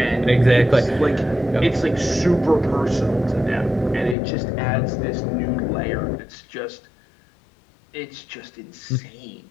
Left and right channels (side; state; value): right; drops out; at 4.2 s